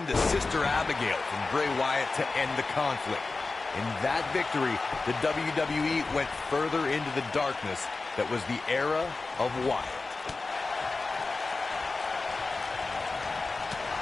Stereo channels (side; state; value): right; quieter; 3.7 dB